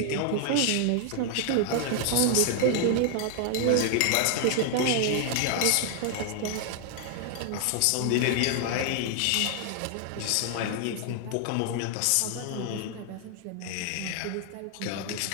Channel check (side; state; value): both; different; correlation 0.00